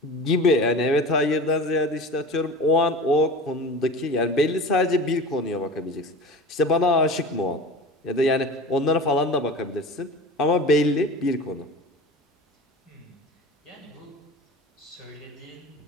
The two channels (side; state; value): both; normal; correlation 0.35